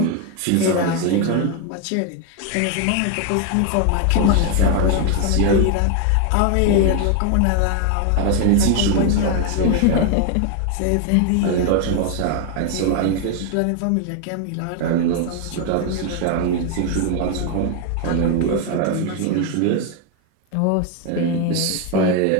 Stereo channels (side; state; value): both; different; correlation 0.01